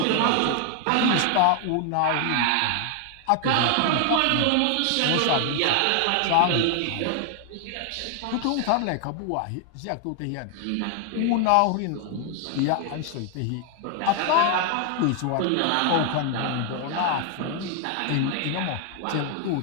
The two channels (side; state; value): both; different; correlation 0.00